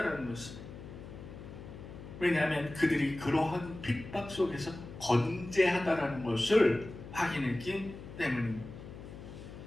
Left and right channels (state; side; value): noise; left; hum, 13 dB below the sound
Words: 것입니다. 왜냐하면 그들이 그러한 핍박 속에서 건재하다라는 것을 확인했기 때문입니다.